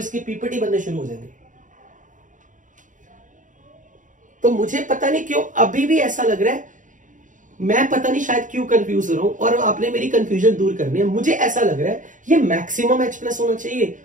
पीपीटी बनने शुरू हो जाएंगे। तो मुझे पता नहीं क्यों अभी भी ऐसा लग रहा है, मैं पता नहीं शायद क्यों कंफ्यूज हो रहा हूं, और आपने मेरी कंफ्यूजन दूर करनी है। मुझे ऐसा लग रहा है ये मैक्सिमम H+ होना चाहिए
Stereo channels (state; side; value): late; left; 0.37 ms